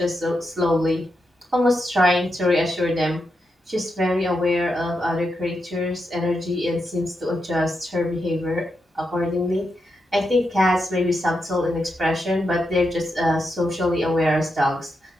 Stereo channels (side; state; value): both; normal; correlation 0.85